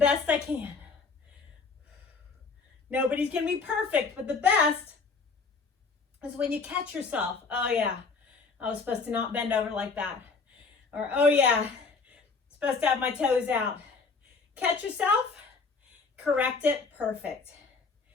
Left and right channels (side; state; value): right; quieter; 4.6 dB